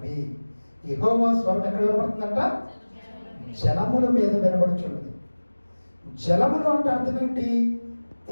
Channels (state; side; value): inverted; both; correlation -1.00